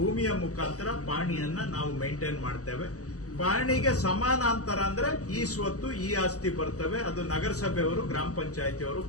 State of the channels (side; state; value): right; late; 0.66 ms